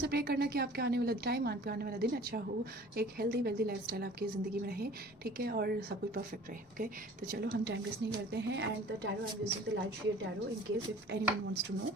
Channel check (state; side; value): normal; both; correlation 0.47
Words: प्रे करना कि आपके आने वाला टाइम, आपके आने वाला दिन अच्छा हो, एक हेल्दी वेल्दी लाइफस्टाइल आपकी ज़िंदगी में रहे, ठीक है, और सब कुछ परफेक्ट रहे। ओके, तो चलो हम टाइम वेस्ट नहीं करते हैं। And the tarot I am using the Light Seer tarot in case if anyone wants to know